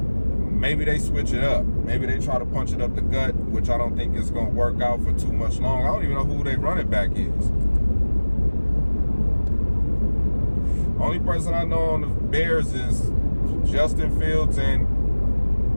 they switch it up. Maybe they try to punch it up the gut, which I don't think is going to work out for too much long. I don't even know who their running back is. Only person I know on the Bears is Justin Fields and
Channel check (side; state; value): both; inverted; correlation -1.00